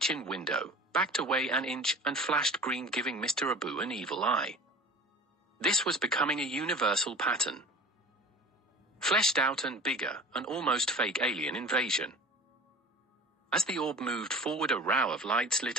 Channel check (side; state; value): both; normal; correlation 0.40